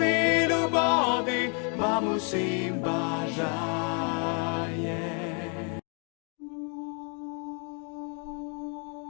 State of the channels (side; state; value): right; quieter; 39.1 dB